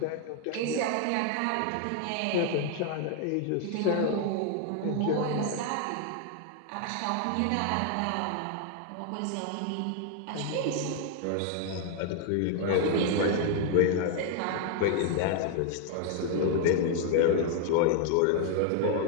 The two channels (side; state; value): both; different; correlation 0.00